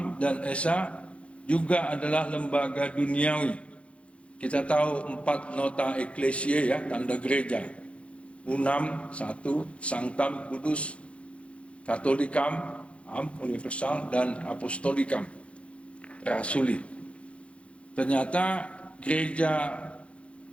dan Esa juga adalah lembaga duniawi. Kita tahu 4 nota ecclesiae ya, tanda gereja. Unam, 1, Sanctam, kudus, Catholicam, Am, universal, dan Apostolicam, rasuli. Ternyata gereja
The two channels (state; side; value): late; right; 0.061 ms